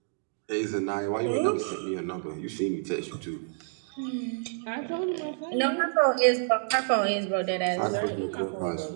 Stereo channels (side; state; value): left; silent; digital silence